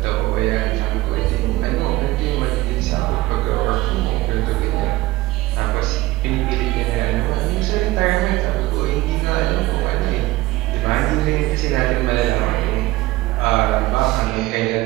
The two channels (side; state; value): left; quieter; 18.5 dB